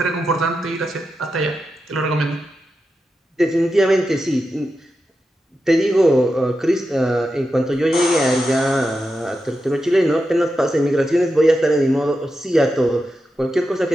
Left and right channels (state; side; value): normal; both; correlation 0.89